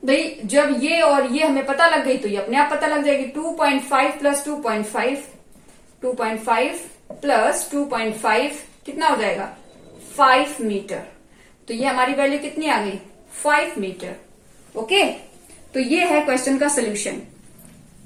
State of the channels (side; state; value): both; identical; correlation 1.00